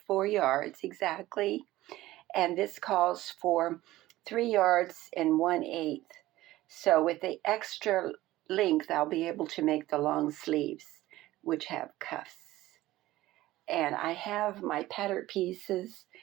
4 yards exactly, and this calls for 3 yards and 1/8. So with the extra length, I'll be able to make the long sleeves, which have cuffs. And I have my pattern pieces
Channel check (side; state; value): left; quieter; 16.5 dB